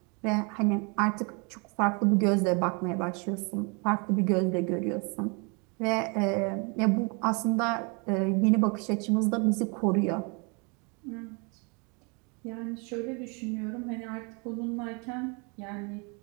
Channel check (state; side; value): quieter; left; 32.6 dB